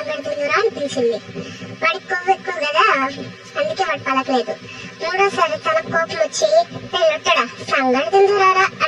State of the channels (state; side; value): identical; both; correlation 1.00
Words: తిందురా అని పిలిచింది. వాడికి కొవ్వు ఎక్కువ కదా, అందుకే వాడు పలకలేదు. 3వసారి తన కోపం వచ్చి లొట్టడా సంగడి తిందురారా